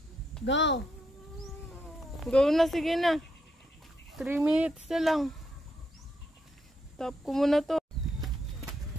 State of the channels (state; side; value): normal; both; correlation 0.79